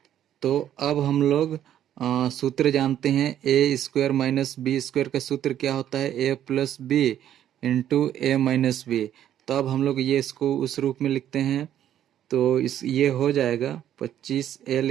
तो अब हम लोग सूत्र जानते हैं, a² माइनस b² का सूत्र क्या होता है? a plus b into a minus b. तो अब हम लोग ये इसको उस रूप में लिखते हैं, तो ये हो जाएगा 25a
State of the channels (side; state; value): left; quieter; 10.9 dB